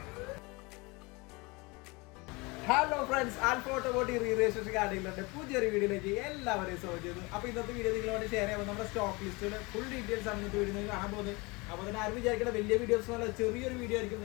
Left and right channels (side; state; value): right; quieter; 26.3 dB